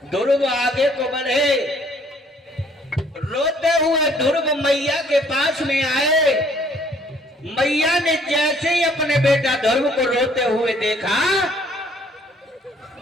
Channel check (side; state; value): both; normal; correlation 0.61